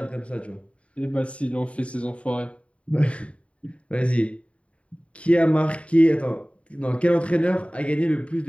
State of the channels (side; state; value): right; late; 0.063 ms